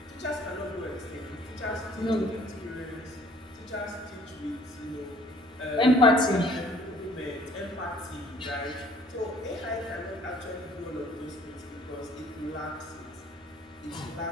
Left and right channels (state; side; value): normal; both; correlation 0.56